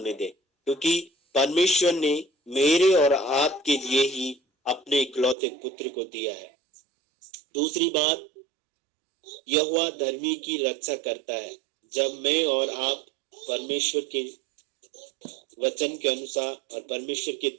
दे, क्योंकि परमेश्वर ने मेरे और आपके लिए ही अपने इकलौते पुत्र को दिया है। दूसरी बात, यहोवा धर्मी की रक्षा करता है। जब मैं और आप परमेश्वर के वचन के अनुसार और परमेश्वर की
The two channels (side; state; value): left; drops out; at 5.4 s